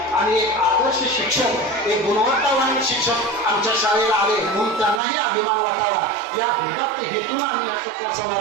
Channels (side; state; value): left; drops out; at 5.0 s